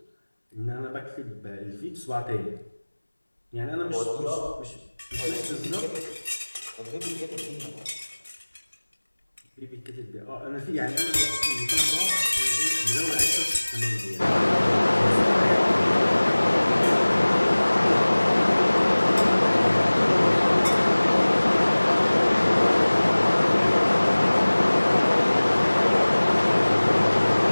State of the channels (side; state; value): both; inverted; correlation -1.00